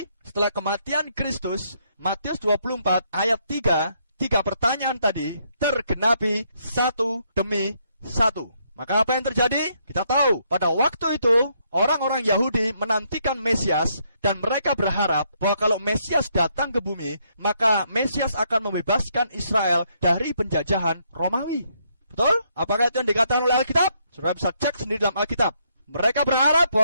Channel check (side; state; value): both; inverted; correlation -0.73